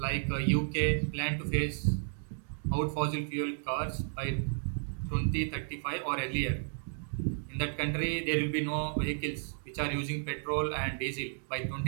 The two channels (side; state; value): left; silent; digital silence